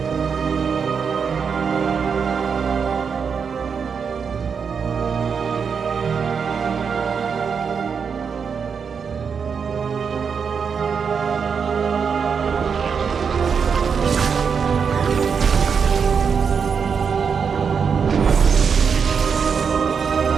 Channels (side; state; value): left; quieter; 6.3 dB